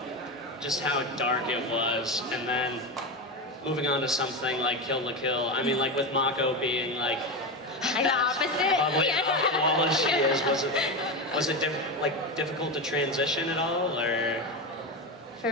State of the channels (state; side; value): normal; both; correlation 0.17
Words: just how dark it was, and then moving on to something like Kill la Kill. I mean, with Mako being the opposite. Bubbly and alcohol as she is, was it difficult to transition at all, or? For